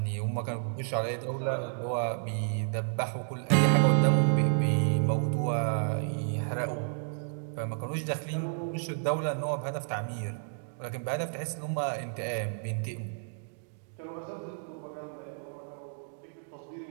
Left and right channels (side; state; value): left; silent; digital silence